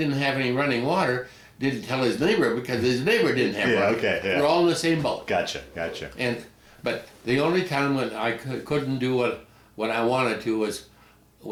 have any running water didn't tell his neighbor because his neighbor didn't have Yeah, running. okay, yeah. We're all in the same boat. Gotcha. But the only time when I couldn't do what I wanted to was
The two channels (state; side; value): identical; both; correlation 1.00